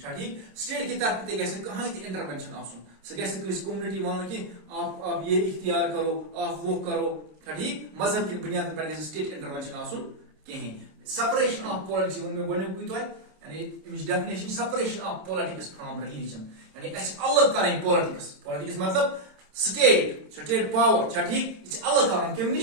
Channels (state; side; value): late; left; 26 ms